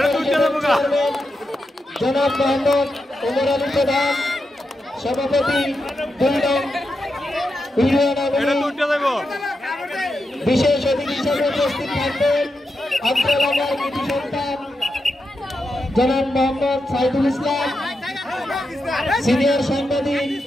জনাব মোহাম্মদ ওমর আলী প্রধান, সভাপতি 2 নং বিশেষ অতিথি হিসেবে উপস্থিত থাকবেন আন্তঃলাগার কৃতি সন্তান জনাব মোহাম্মদ সাইদুল ইসলাম, সিনিয়র সাংবাদিক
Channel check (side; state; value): both; normal; correlation 0.87